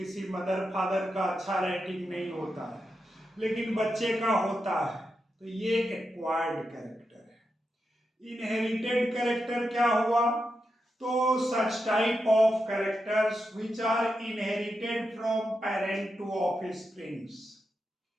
मदर फादर का अच्छा राइटिंग नहीं होता है लेकिन बच्चे का होता है, तो ये एक एक्वायर्ड कैरेक्टर है। इनहेरिटेड कैरेक्टर क्या हुआ? तो such type of characters which are inherited from parent to offsprings,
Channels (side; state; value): both; normal; correlation 0.87